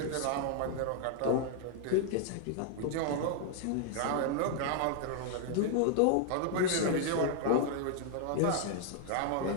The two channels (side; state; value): both; different; correlation 0.00